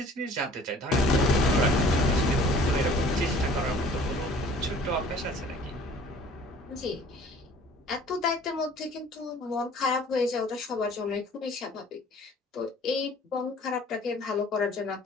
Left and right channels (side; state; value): both; normal; correlation 0.51